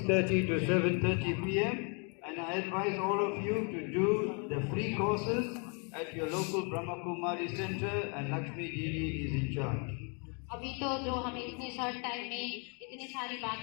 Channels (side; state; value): right; quieter; 36.5 dB